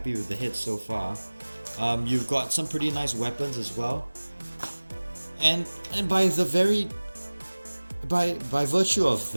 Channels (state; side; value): inverted; both; correlation -1.00